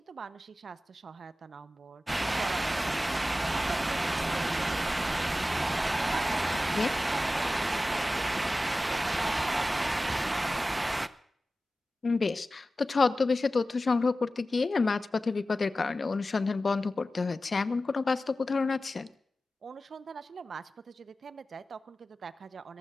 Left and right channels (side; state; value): both; normal; correlation 0.95